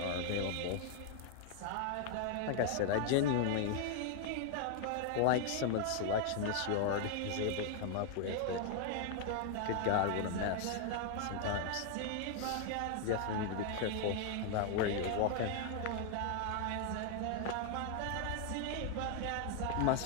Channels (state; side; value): different; both; correlation 0.00